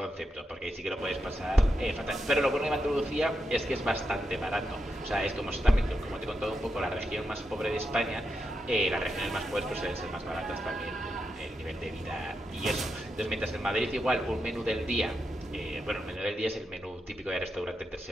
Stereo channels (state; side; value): normal; both; correlation 0.86